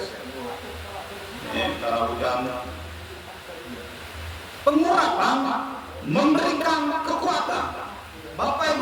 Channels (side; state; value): both; identical; correlation 1.00